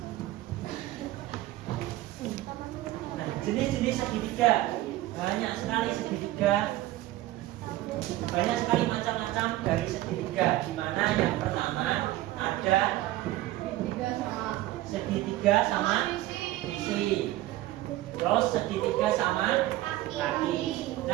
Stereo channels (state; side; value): quieter; left; 16.2 dB